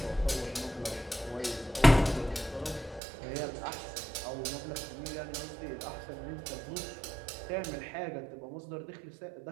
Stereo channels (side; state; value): left; drops out; at 3.0 s